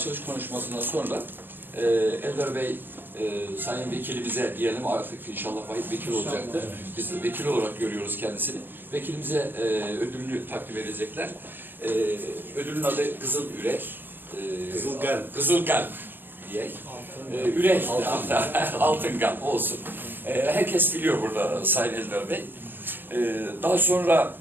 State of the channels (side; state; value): left; late; 0.095 ms